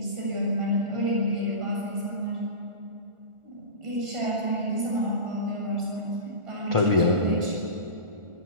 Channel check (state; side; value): late; left; 1.4 ms